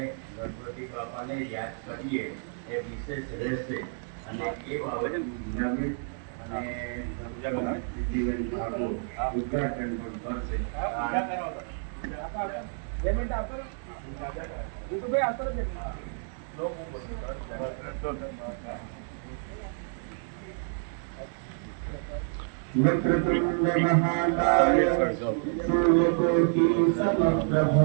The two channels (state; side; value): silent; left; 58 dB below the other